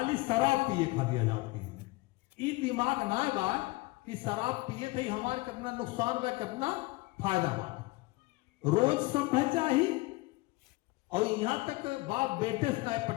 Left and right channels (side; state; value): right; quieter; 22.7 dB